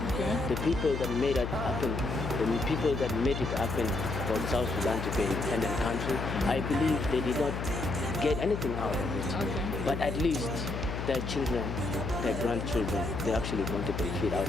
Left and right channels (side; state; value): left; noise; hum, 4 dB below the sound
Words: Okay. The people that made it happen, the people that made it happen for South Sudan to be an independent country, I believe they did not get anything out of it. Okay. But at least their children, their grandchildren, they're actually going to benefit out